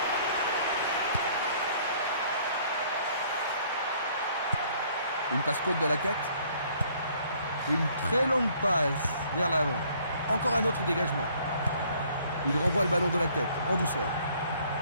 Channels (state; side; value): inverted; both; correlation -0.60